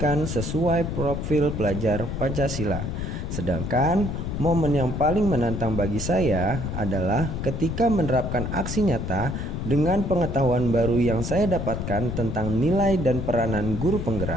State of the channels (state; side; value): noise; left; rumble, 4 dB below the sound